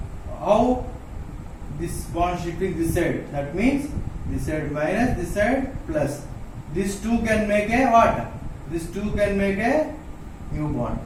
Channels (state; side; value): identical; both; correlation 1.00